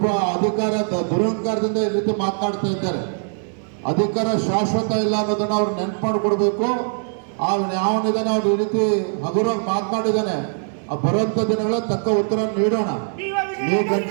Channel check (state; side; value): silent; left; digital silence